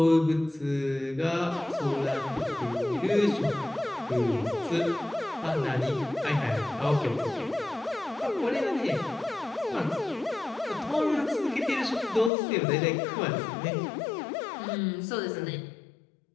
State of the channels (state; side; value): drops out; right; at 12.3 s